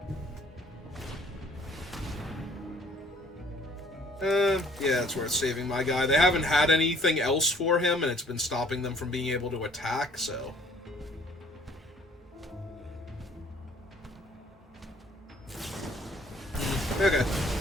Yeah, it's worth saving my guy. They haven't had anything else for him, and it's been stopping them from being able to attack, so... Okay.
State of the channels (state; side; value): normal; both; correlation 0.58